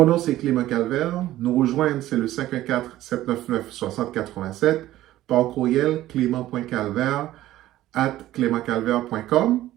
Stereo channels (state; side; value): quieter; left; 14.7 dB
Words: nom, c'est Clément Calvaire. Nous rejoindre, c'est le 514-799-6087 par courriel clément.calvaire@clémentcalvaire.com.